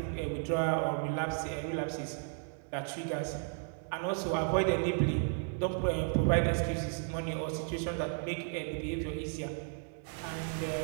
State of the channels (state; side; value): silent; left; 55 dB below the other